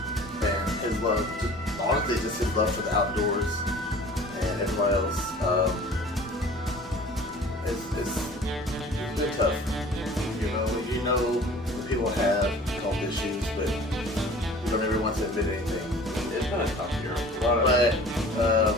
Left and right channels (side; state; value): both; normal; correlation 0.46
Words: and his love. Honestly, just his love for the outdoors and everybody else. It's been tough. You know when people have health issues, but you don't ever want to admit anything. It's been a tough year. But